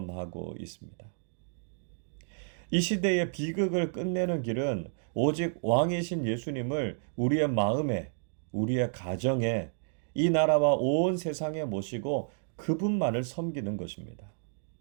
있습니다. 이 시대의 비극을 끝내는 길은 오직 왕이신 예수님을 우리의 마음에, 우리의 가정에, 이 나라와 온 세상에 모시고 그분만을 섬기는 것입니다.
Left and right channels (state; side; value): silent; left; digital silence